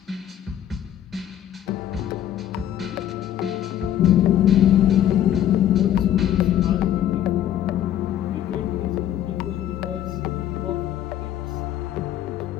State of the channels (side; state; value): right; quieter; 11.2 dB